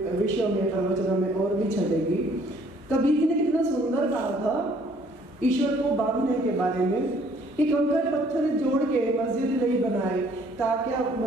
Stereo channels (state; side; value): normal; both; correlation 0.60